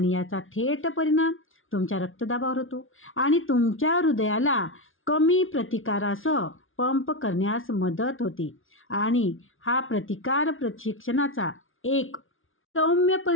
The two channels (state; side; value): late; right; 0.58 ms